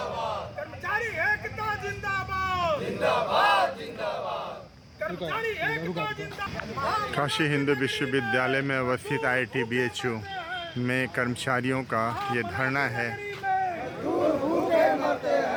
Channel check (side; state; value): both; identical; correlation 1.00